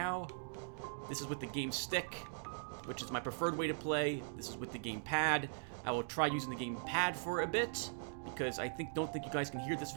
This is with the game stick, which is my preferred way to play. This is with the game pad. I will try using the game pad for a bit, because I don't think you guys can hear this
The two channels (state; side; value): silent; left; digital silence